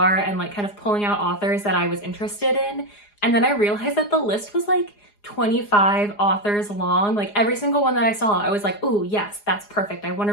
and kind of pulling out authors that I was interested in. And then I realized that the list was 25 authors long. Every single one that I saw, I was like, oh yes, that's perfect. I want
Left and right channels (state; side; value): late; right; 4.9 ms